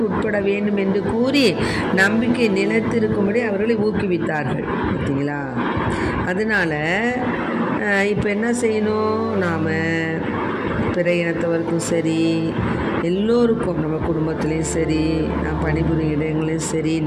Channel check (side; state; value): both; identical; correlation 1.00